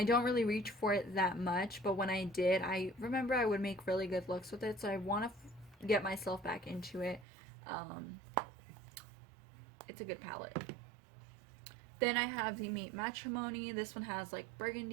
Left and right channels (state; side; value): drops out; left; at 7.2 s